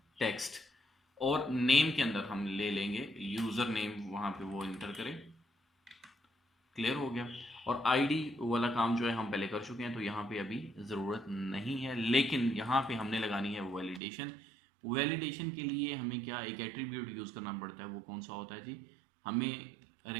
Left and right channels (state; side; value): drops out; left; at 14.0 s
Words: टेक्स्ट। और नेम के अंदर हम ले लेंगे यूज़र नेम, वहाँ पे वो इंटर करें। क्लियर हो गया? और आईडी वाला काम जो है हम पहले कर चुके हैं, तो यहाँ पे अभी ज़रूरत नहीं है। लेकिन यहाँ पे हमने लगानी है वैलिडेशन। वैलिडेशन के लिए हमें क्या एक एट्रीब्यूट यूज़ करना पड़ता है। वो कौन सा होता है जी? हमें